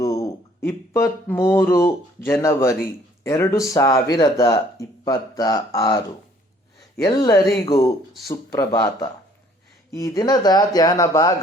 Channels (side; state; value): both; normal; correlation 0.59